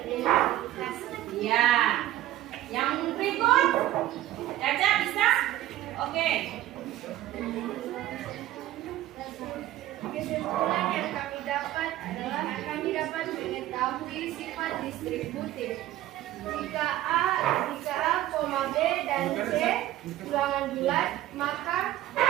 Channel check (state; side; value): quieter; left; 14.3 dB